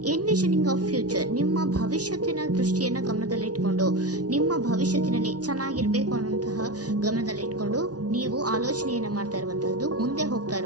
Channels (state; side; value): late; left; 0.68 ms